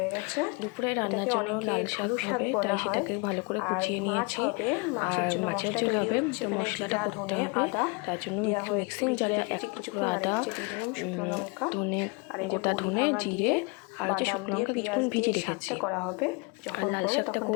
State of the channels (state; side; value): quieter; right; 30.6 dB